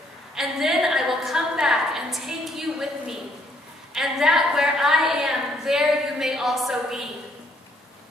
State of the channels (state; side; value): normal; both; correlation 0.67